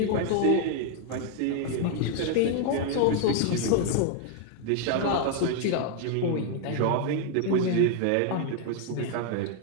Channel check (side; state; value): both; different; correlation 0.00